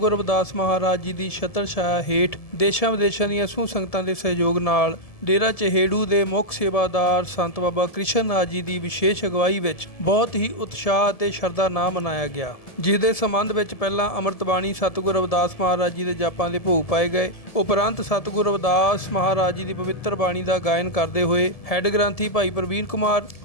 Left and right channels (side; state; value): right; late; 1.7 ms